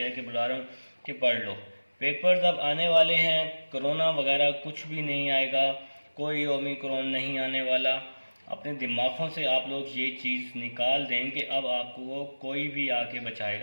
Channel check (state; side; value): inverted; both; correlation -1.00